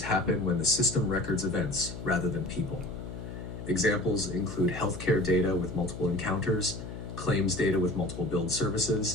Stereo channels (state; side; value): noise; left; hum, 10 dB below the sound